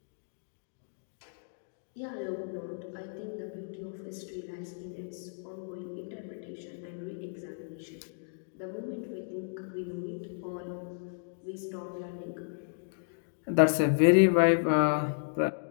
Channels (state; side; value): silent; right; digital silence